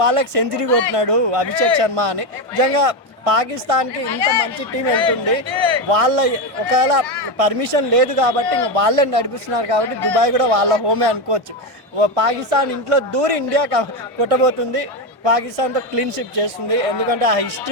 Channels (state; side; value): normal; both; correlation 0.11